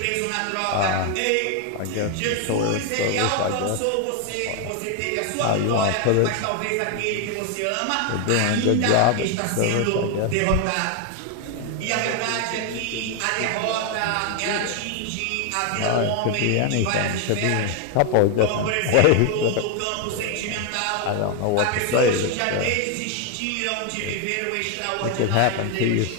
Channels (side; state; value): both; different; correlation 0.01